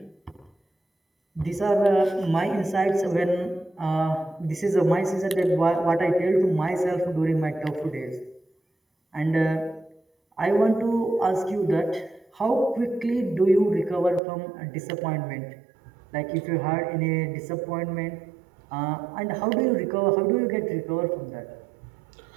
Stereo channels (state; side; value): drops out; left; at 14.2 s